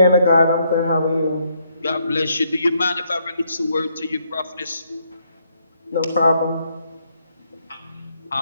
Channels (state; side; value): inverted; both; correlation -0.73